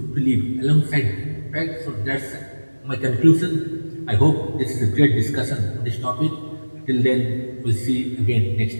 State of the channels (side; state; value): both; inverted; correlation -1.00